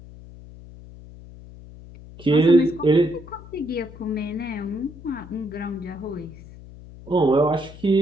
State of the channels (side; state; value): left; noise; hum, 18 dB below the sound